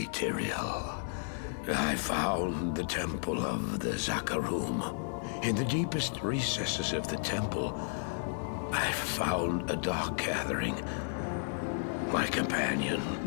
Tyrael. I found the temple of the Zakarum. In the deepest recesses of the temple, I found a dark gathering. My companion,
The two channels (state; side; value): silent; right; digital silence